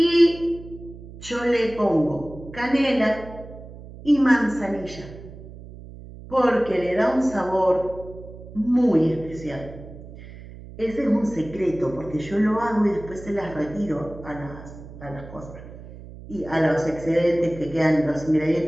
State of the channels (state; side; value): noise; right; hum, 16 dB below the sound